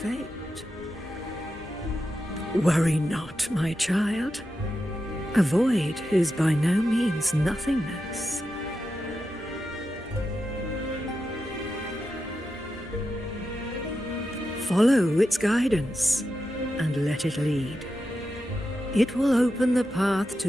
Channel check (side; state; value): both; normal; correlation 0.89